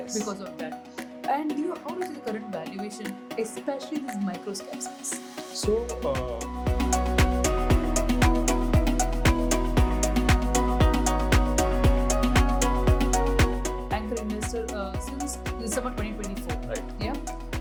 of that. And how do you see the current valuation, especially this microcap space? So, anchor investor since December 2024. Right.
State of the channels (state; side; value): identical; both; correlation 1.00